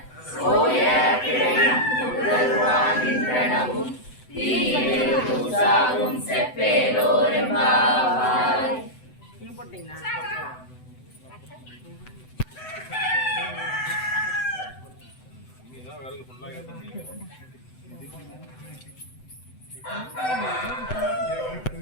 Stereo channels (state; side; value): late; right; 7.9 ms